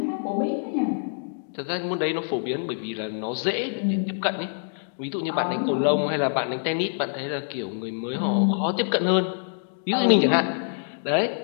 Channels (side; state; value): right; silent; digital silence